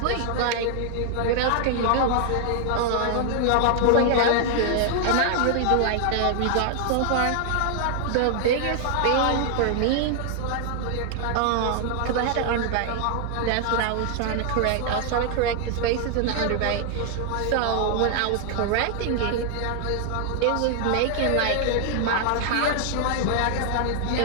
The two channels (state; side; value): different; both; correlation 0.00